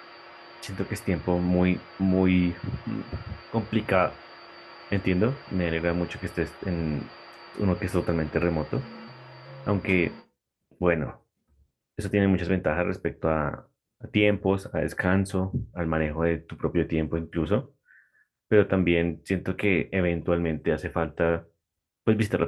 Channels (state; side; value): identical; both; correlation 1.00